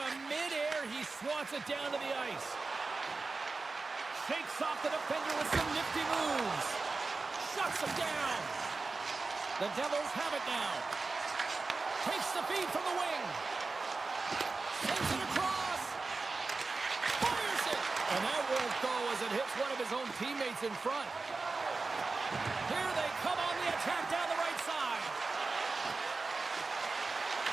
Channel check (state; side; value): quieter; left; 3.9 dB